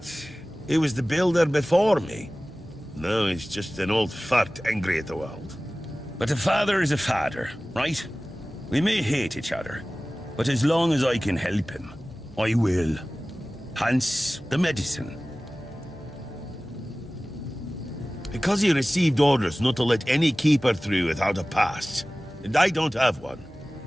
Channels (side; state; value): both; normal; correlation 0.97